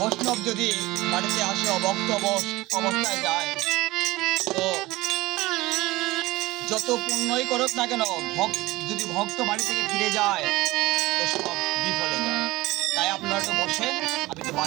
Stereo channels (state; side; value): quieter; left; 19.6 dB